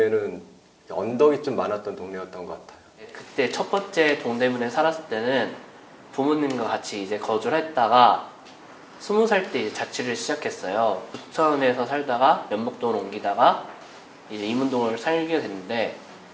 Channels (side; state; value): both; identical; correlation 1.00